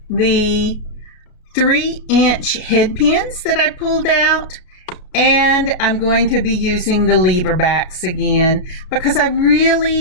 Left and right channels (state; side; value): late; right; 33 ms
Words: the 3-inch head pins that I pulled out. And I'm going to be using the lever backs again because I